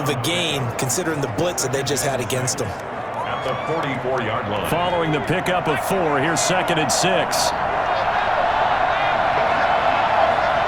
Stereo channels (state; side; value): identical; both; correlation 1.00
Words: a gain considering the blitz that they just had against them. At the 44-yard line. Following the pickup of 4, here's 2nd and 6.